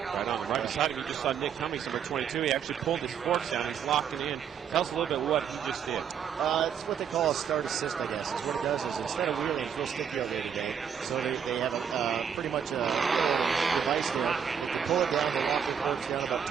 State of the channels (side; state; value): left; quieter; 7.7 dB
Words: on. Right beside him, you just saw Nick Cummings, number 22. He actually pulled his forks down. He's locked it in. Tell us a little bit what he just did. It's what they call a start assist, I guess. It's what it does is instead of wheeling, he'll stick the other today. So they have pretty much a device there. You can pull it down, they lock the curbs down about